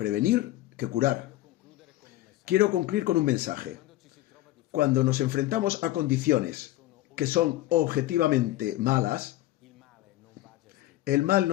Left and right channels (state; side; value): quieter; right; 15.9 dB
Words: que curar. Quiero concluir con un mensaje. Cuando nos enfrentamos a condiciones que son objetivamente malas, el mal